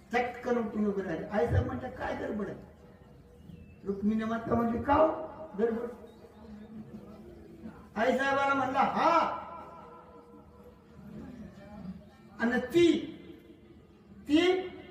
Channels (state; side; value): identical; both; correlation 1.00